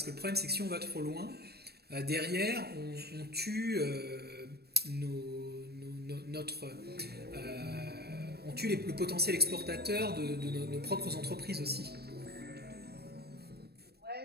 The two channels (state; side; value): late; left; 0.47 ms